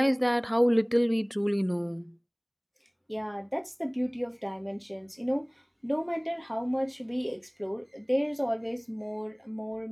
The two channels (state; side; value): identical; both; correlation 1.00